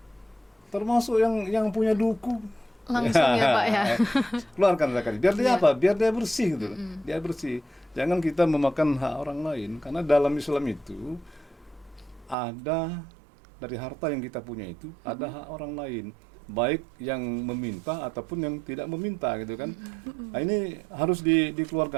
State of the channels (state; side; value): drops out; left; at 12.4 s